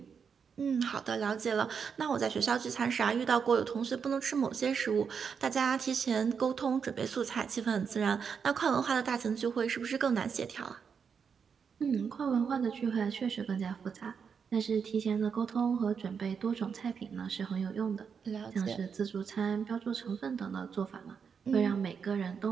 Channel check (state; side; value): quieter; left; 6.4 dB